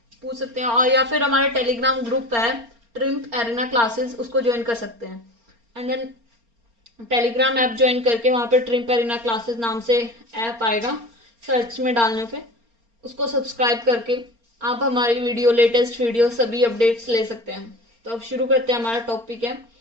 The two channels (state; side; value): late; left; 4.3 ms